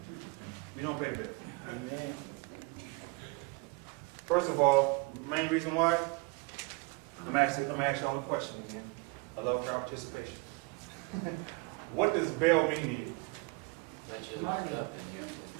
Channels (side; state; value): left; quieter; 28.8 dB